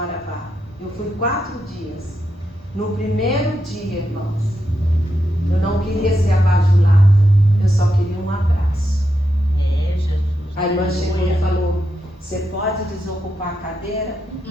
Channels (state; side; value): normal; both; correlation 0.85